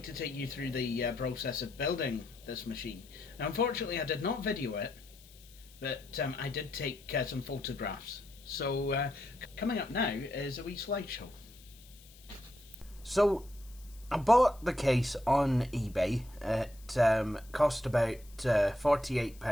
to take you through the process of building this machine. Now, unfortunately I did not video it, but I did take some photographs. So coming up now is a wee slideshow. So I bought the case on eBay. It cost about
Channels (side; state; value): left; noise; hiss, 24 dB below the sound